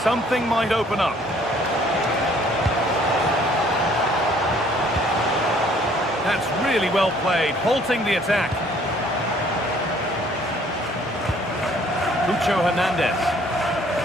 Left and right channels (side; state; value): both; normal; correlation 0.59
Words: something might open up. That's really well played, halting the attack. Cucho Hernandez.